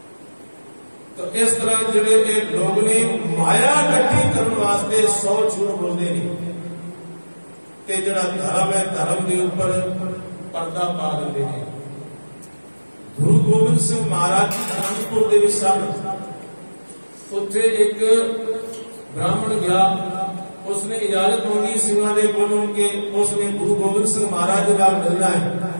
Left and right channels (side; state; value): both; inverted; correlation -1.00